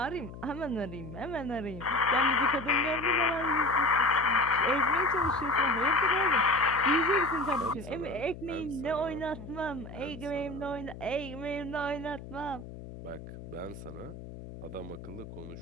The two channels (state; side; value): noise; left; hum, 13 dB below the sound